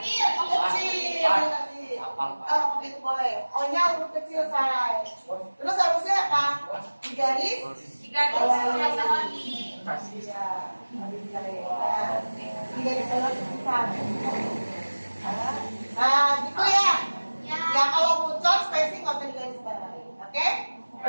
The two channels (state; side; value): inverted; both; correlation -1.00